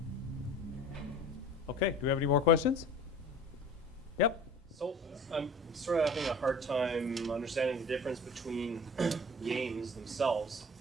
Okay, do we have any more questions? Yep. So I'm sort of having a hard time understanding the difference between games themselves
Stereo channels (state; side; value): normal; both; correlation 0.42